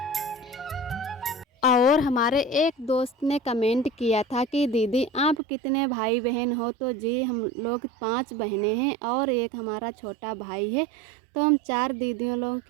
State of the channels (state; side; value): drops out; left; at 5.4 s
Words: और हमारे एक दोस्त ने कमेंट किया था कि दीदी आप कितने भाई बहन हो? तो जी हम लोग 5 बहनें हैं और एक हमारा छोटा भाई है। तो हम 4 दीदियों लोगों